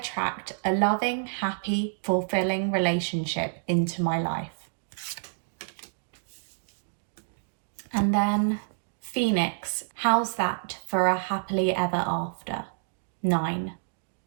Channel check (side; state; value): left; silent; digital silence